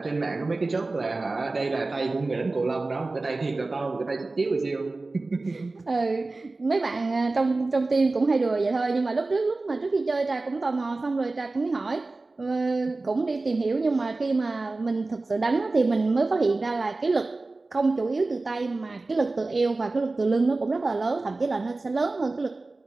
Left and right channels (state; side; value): quieter; left; 3.3 dB